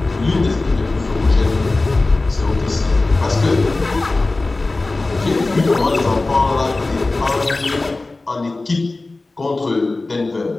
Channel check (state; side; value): quieter; right; 3.2 dB